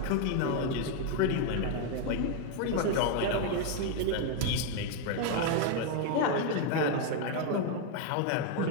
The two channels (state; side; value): different; both; correlation 0.01